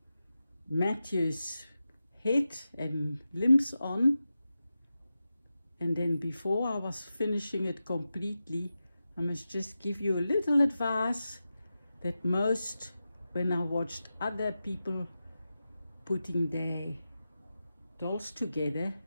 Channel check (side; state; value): both; inverted; correlation -0.92